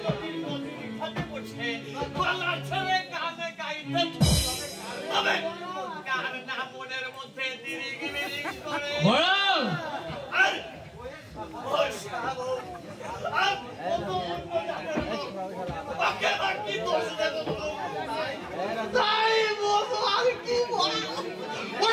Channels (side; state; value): both; identical; correlation 1.00